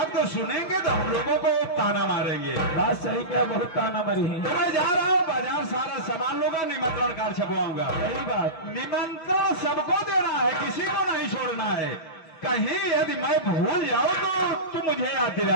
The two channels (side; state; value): right; late; 6.2 ms